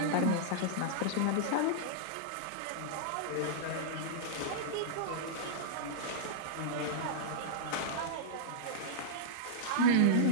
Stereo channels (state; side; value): different; both; correlation -0.02